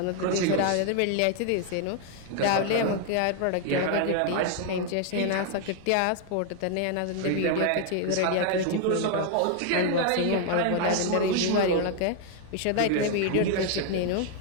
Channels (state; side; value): different; both; correlation 0.00